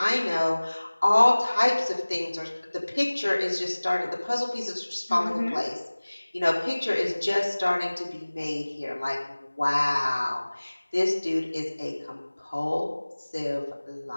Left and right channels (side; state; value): both; inverted; correlation -1.00